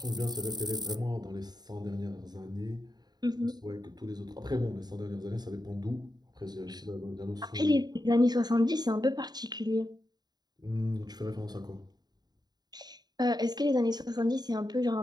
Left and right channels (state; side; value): late; left; 0.20 ms